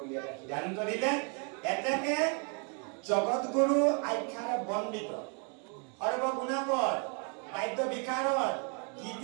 এটা সিদ্ধান্ত দিলে এতেকে জগত গুৰু আখ্যাৰে বন্দিত সৰ্বগুণাকৰ বাদ্য বিকাৰৰ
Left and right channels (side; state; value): left; quieter; 38.1 dB